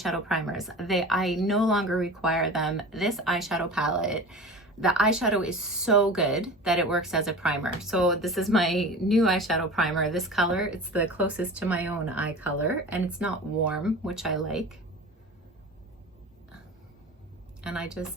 primers. I no longer require them. This eyeshadow palette, the eyeshadow is so good that it works as a primer. So this is my new eyeshadow primer. This color, it's the closest to my own eye color, and it's not warm, which I like. And I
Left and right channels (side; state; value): both; normal; correlation 0.35